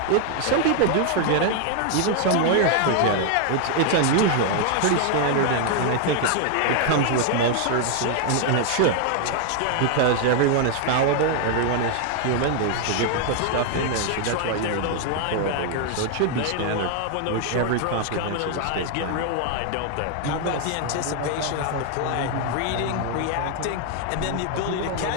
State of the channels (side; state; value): both; different; correlation 0.00